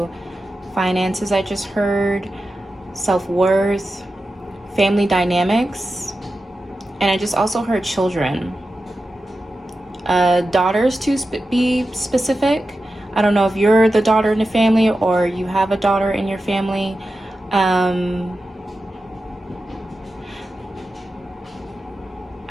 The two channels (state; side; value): normal; both; correlation 0.92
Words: finances, I just heard, self-worth, family dynamics. And I just also heard children, daughters to be specific. I don't know if you're the daughter in the family or you have a daughter in your family. I'm